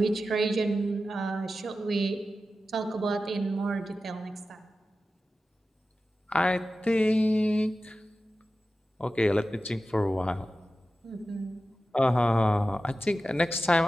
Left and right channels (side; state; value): both; normal; correlation 0.93